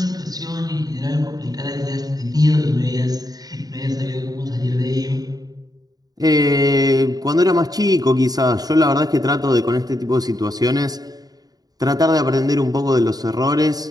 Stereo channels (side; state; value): left; late; 0.18 ms